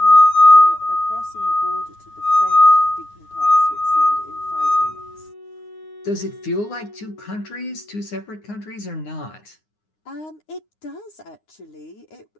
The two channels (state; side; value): late; right; 9.7 ms